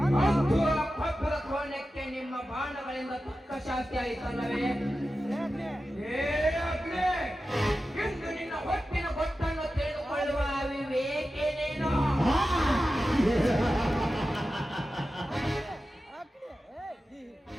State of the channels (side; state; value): both; normal; correlation 0.93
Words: ಅಂತೂ ಆ ಪಕ್ಕದ ಕೋಣಕ್ಕೆ ನಿಮ್ಮ ಬಾಣಗಳಿಂದ ತಕ್ಕ ಶಾಸ್ತಿ ಆಯಿತಲ್ಲವೇ? ಏ ಅಗ್ನಿ, ಇಂದು ನಿನ್ನ ಹೊಟ್ಟಿನ ಗೊತ್ತನ್ನು ತಿಳಿದುಕೊಳ್ಳುವ ವಿವೇಕೇನೇನೋ?